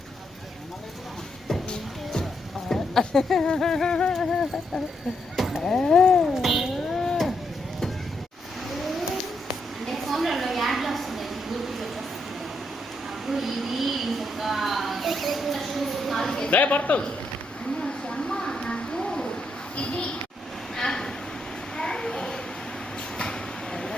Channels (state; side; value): normal; both; correlation 0.79